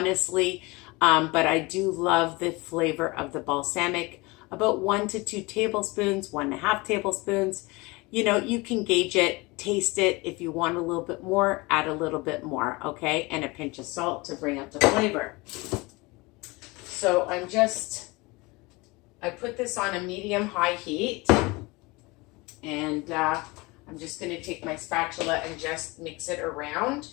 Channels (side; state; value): right; quieter; 24.3 dB